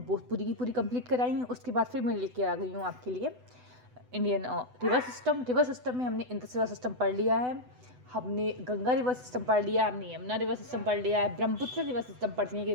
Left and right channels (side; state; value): left; late; 8.0 ms